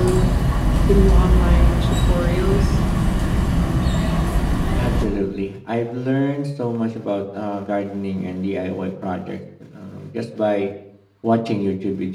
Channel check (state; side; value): identical; both; correlation 1.00